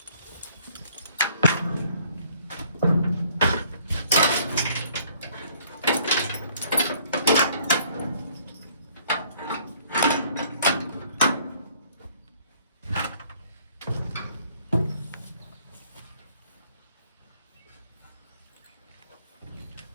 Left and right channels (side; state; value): both; inverted; correlation -0.60